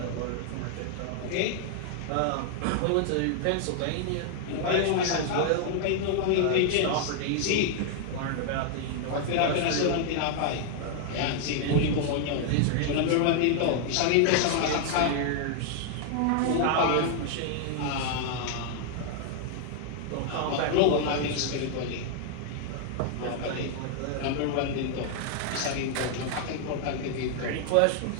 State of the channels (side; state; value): both; different; correlation 0.00